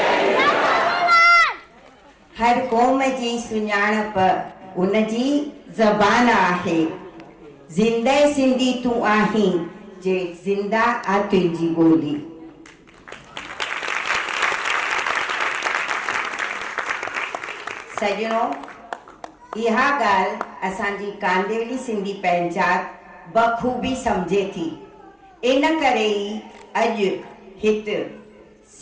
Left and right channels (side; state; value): both; identical; correlation 1.00